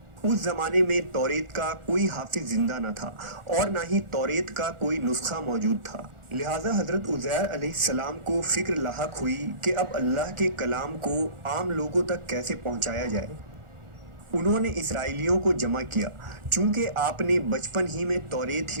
اس زمانے میں توریت کا کوئی حافظ زندہ نہ تھا اور نہ ہی توریت کا کوئی نسخہ موجود تھا، لہٰذا حضرت عزیر علیہ السلام کو فکر لاحق ہوئی کہ اب اللہ کے کلام کو عام لوگوں تک کیسے پہنچایا جائے۔ انہوں نے اسرائیلیوں کو جمع کیا۔ چونکہ آپ نے بچپن ہی میں توریت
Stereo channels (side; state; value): left; late; 1.4 ms